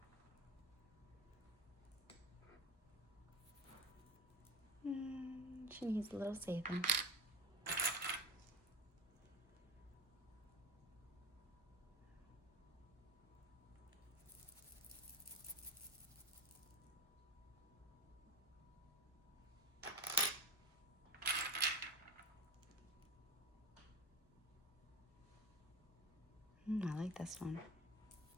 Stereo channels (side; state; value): both; normal; correlation 0.26